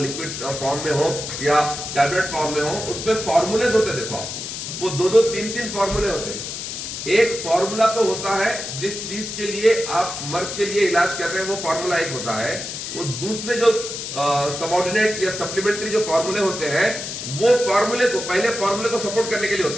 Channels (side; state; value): left; noise; hiss, 6 dB below the sound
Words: फॉर्म में हो या टैबलेट फॉर्म में हो, उसमें फॉर्मूलेज होते हैं। देखो आप, वो 2-2, 3-3 फॉर्मूले होते हैं। एक फॉर्मूला तो होता है जिस चीज के लिए आप मर्ज के लिए इलाज कर रहे हैं, वो फॉर्मूला एक होता है। वो दूसरे जो सबऑर्डिनेट या सप्लीमेंट्री जो फॉर्मूले होते हैं, वो फॉर्मूले को, पहले फॉर्मूले को सपोर्ट करने के लिए